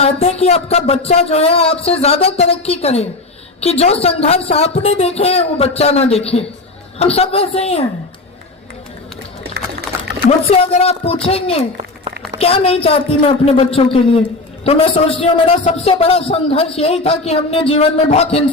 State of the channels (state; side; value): quieter; right; 3.1 dB